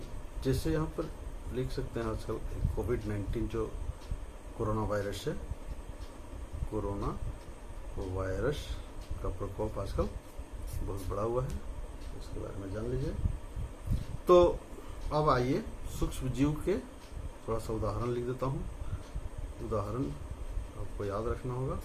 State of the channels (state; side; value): identical; both; correlation 1.00